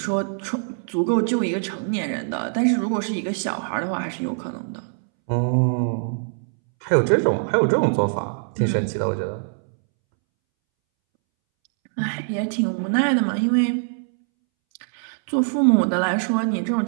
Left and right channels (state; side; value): silent; left; 63 dB below the other